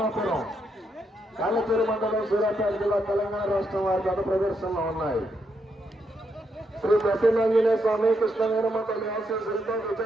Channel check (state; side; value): normal; both; correlation 0.79